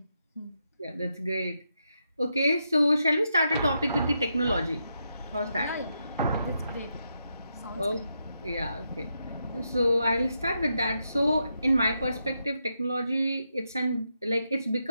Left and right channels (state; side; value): inverted; both; correlation -0.83